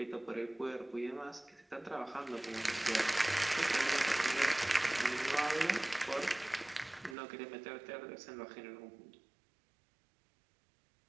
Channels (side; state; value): left; drops out; at 7.2 s